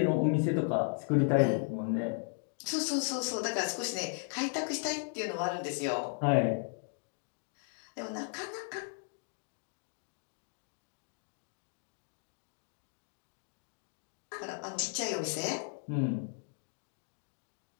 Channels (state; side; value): silent; right; 54 dB below the other